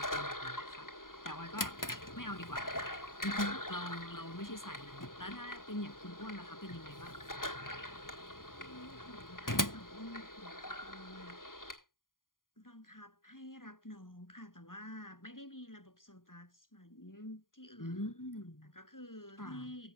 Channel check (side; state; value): right; late; 0.90 ms